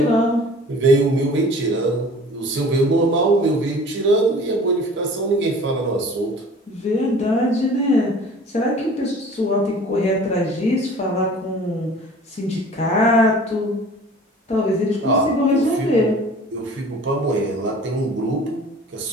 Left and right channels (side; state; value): both; normal; correlation 0.46